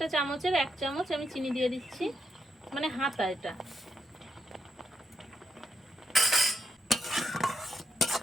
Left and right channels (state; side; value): normal; both; correlation 0.81